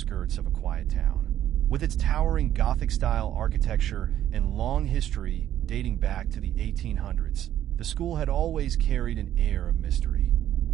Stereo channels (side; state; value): left; quieter; 11.6 dB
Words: of a quiet town. With its towering Gothic-style architecture and long history dating back to the 1800s, the school had always carried an air of mystery.